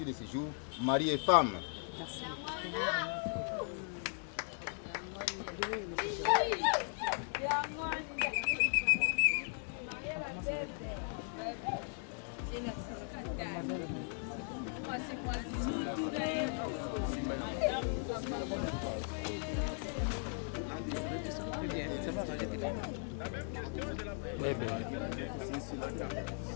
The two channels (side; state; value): right; silent; 53 dB below the other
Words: de ce jour, mari et femme. Merci. Bébé.